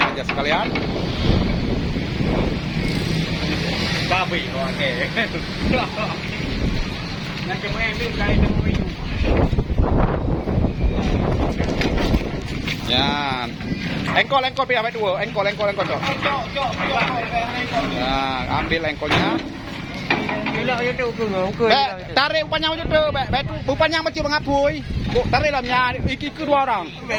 aja sekalian. Babi, oke. Ya, engkol pihak dua, engkol cok. Nah, ambil engkolnya. Tarik upanya macam tu, upanya macam mengapui. Tarik lamnya, iki kedua orang.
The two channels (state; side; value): identical; both; correlation 1.00